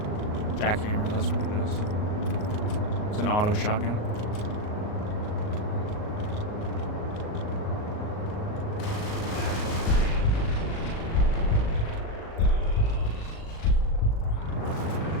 Jackhammer, that's what it is. It's an auto shotgun.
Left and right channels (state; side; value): late; right; 38 ms